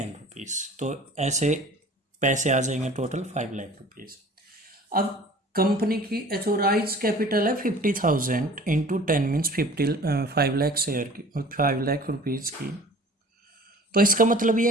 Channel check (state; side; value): normal; both; correlation 0.46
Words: रुपीज़, तो ऐसे पैसे आ जाएंगे टोटल 5 लाख रुपीज़। अब कंपनी की एथोराइज कैपिटल है 50,000 इंटू 10 मीन्स 5 लाख शेयर की, 5 लाख रुपीज़ की। तो इसका मतलब